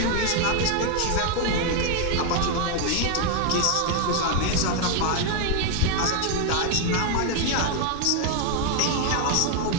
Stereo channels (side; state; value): both; different; correlation 0.01